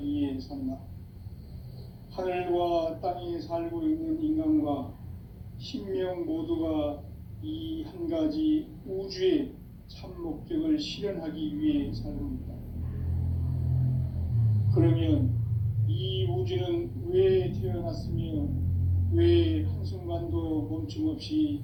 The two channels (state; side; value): identical; both; correlation 1.00